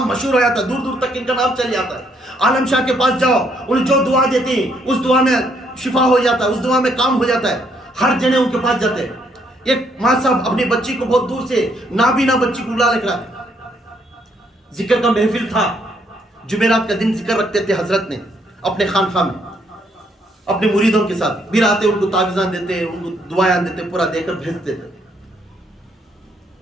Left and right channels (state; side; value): normal; both; correlation 0.71